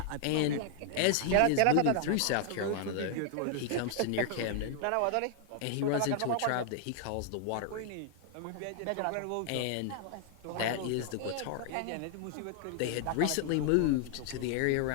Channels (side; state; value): both; different; correlation 0.00